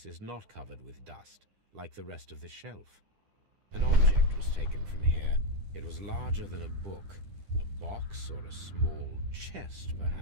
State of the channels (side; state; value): left; late; 10 ms